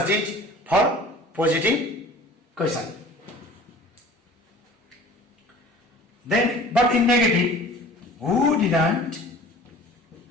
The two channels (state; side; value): normal; both; correlation 0.44